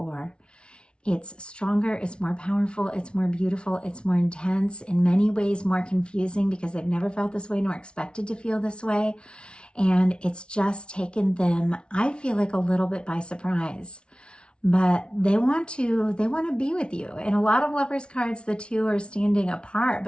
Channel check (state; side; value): late; right; 0.057 ms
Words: It's stronger, it's more powerful, it's more beautiful, it's more intense, in many ways more confusing because they've never felt this way nor expected to feel this way. And it's just taken them, I feel like, a little bit by surprise. But they want to be with you. In a lot of Lovers cards, the two are standing apart,